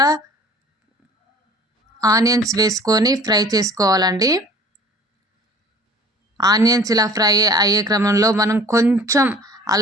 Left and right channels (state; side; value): normal; both; correlation 0.47